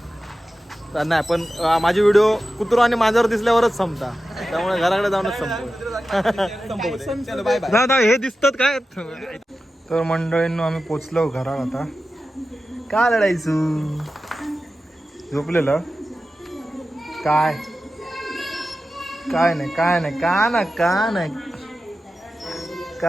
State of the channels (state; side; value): normal; both; correlation 0.93